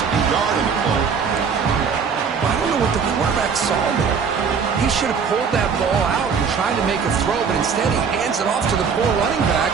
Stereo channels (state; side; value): quieter; left; 6.1 dB